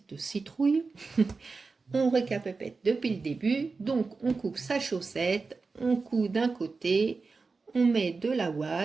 citrouille. On récapitule depuis le début. Donc, on coupe sa chaussette, on coud d'un côté, on met de la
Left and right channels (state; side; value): quieter; left; 4.3 dB